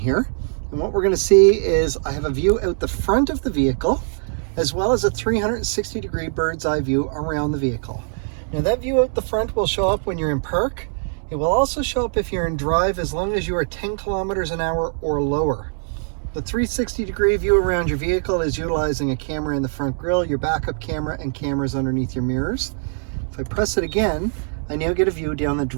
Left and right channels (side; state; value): left; silent; digital silence